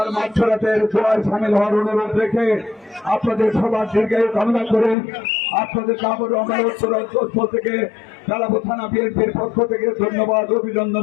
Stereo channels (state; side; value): drops out; right; at 5.0 s